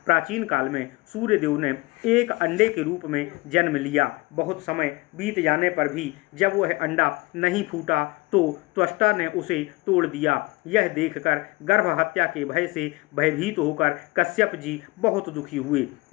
प्राचीन काल में सूर्यदेव ने एक अंडे के रूप में जन्म लिया। बहुत समय बीत जाने पर भी जब वह अंडा नहीं फूटा तो त्वष्टा ने उसे तोड़ दिया। यह देखकर गर्भ हत्या के भय से भयभीत होकर कश्यप जी बहुत दुखी हुए।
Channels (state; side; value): quieter; right; 23.8 dB